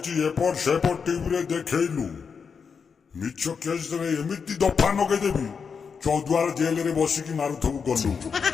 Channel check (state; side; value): quieter; right; 6.0 dB